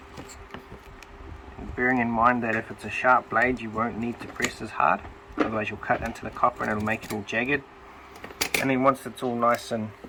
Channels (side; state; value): both; identical; correlation 1.00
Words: bearing in mind that if it's a sharp blade you won't need to press as hard, otherwise you'll cut into the copper and it'll make it all jagged. And then once it's all nice and